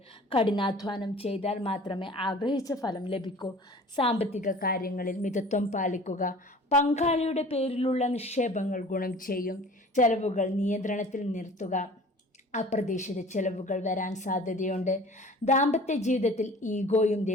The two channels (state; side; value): normal; both; correlation 0.45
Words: കഠിനാധ്വാനം ചെയ്താൽ മാത്രമേ ആഗ്രഹിച്ച ഫലം ലഭിക്കൂ. സാമ്പത്തിക കാര്യങ്ങളിൽ മിതത്വം പാലിക്കുക. പങ്കാളിയുടെ പേരിലുള്ള നിക്ഷേപങ്ങൾ ഗുണം ചെയ്യും. ചെലവുകൾ നിയന്ത്രണത്തിൽ നിർത്തുക. അപ്രതീക്ഷിത ചെലവുകൾ വരാൻ സാധ്യതയുണ്ട്. ദാമ്പത്യ ജീവിതത്തിൽ ഈഗോയും